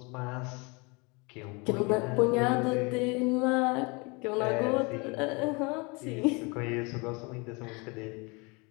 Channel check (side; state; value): right; quieter; 28.8 dB